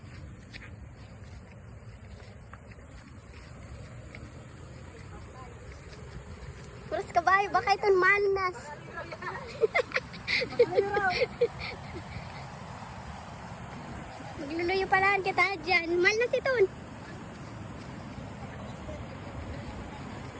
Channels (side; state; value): both; identical; correlation 1.00